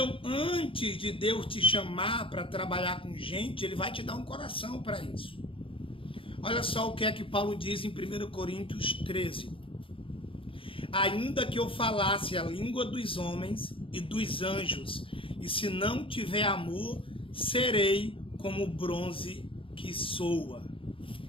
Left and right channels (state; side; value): late; right; 0.26 ms